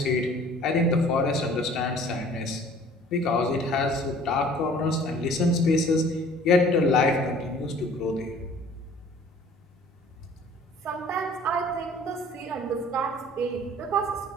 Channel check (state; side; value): normal; both; correlation 0.51